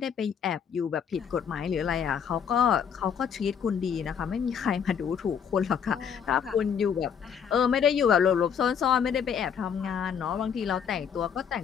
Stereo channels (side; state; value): right; quieter; 7.5 dB